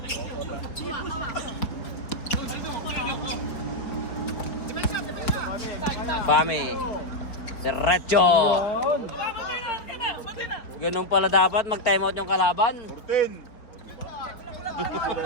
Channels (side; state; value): right; late; 4.5 ms